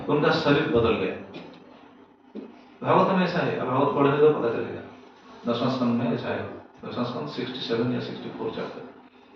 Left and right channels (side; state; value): both; identical; correlation 1.00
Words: उनका शरीर बदल गया। भागवत में ऐसा है, अब भागवत पढ़ने तो पता चलेगा, 10वां स्कंद में ऐसा है, 10वां स्कंद 67 या 64 चैप्टर